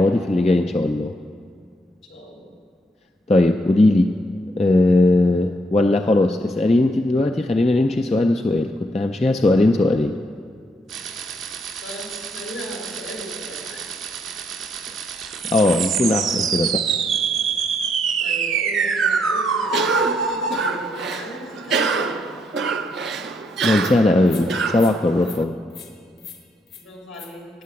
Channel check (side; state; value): both; normal; correlation 0.75